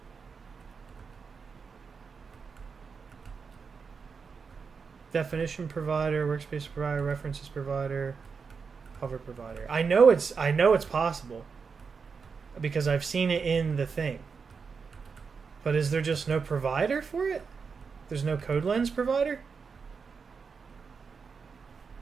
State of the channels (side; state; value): left; quieter; 5.4 dB